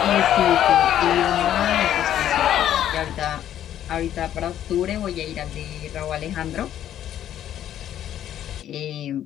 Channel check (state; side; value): quieter; right; 11.1 dB